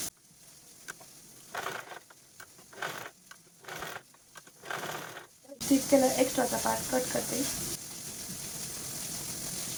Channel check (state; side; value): identical; both; correlation 1.00